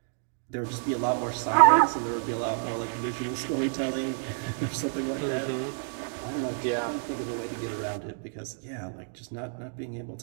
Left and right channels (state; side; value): silent; left; digital silence